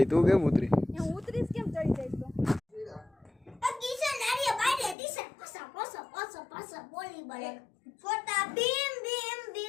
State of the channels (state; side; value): drops out; right; at 5.0 s